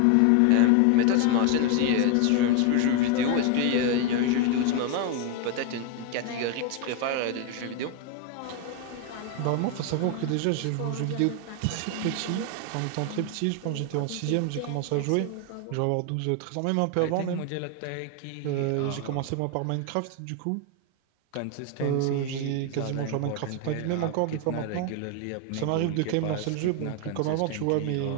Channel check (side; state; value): both; different; correlation 0.01